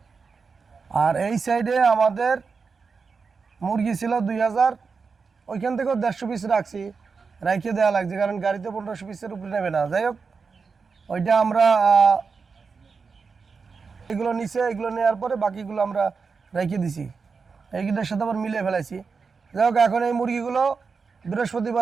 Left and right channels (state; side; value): quieter; left; 5.1 dB